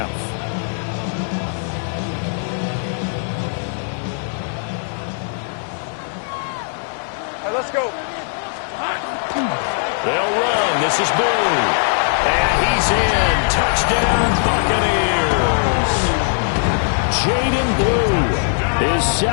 Let's go. They'll run. This is Blue. And he's in. Touchdown, Buccaneers. Jaden Blue, his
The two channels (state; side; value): silent; right; 66 dB below the other